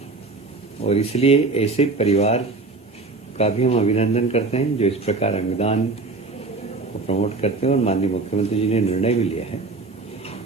और इसलिए ऐसे परिवार का भी हम अभिनंदन करते हैं जो इस प्रकार अंगदान को प्रमोट करते हैं। और माननीय मुख्यमंत्री जी ने निर्णय भी लिया है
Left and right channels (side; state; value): left; quieter; 3.6 dB